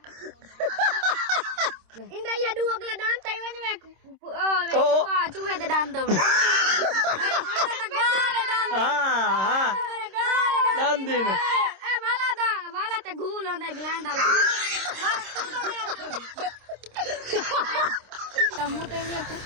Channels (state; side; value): late; left; 26 ms